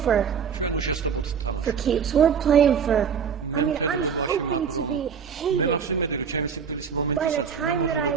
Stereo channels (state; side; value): quieter; left; 6.8 dB